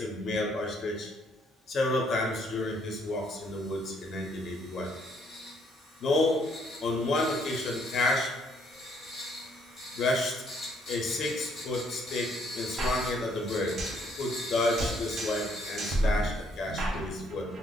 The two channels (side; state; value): both; normal; correlation 0.67